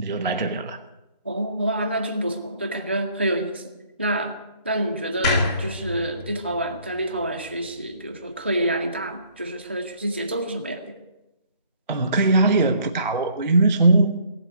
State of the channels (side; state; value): both; inverted; correlation -0.61